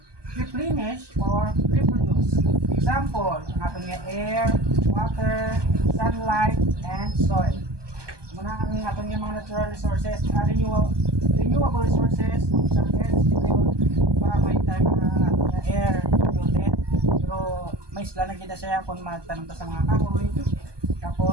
replenished or reproduced. Example, ang ating air, water, sunlight, and soil. Muna ang ating mga natural resources are renewable renewable resources, isang energy yun, diba may time na air polluted, pero may isla na kita siya kung magtanong ta sa mga kahoy.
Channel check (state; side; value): late; left; 1.2 ms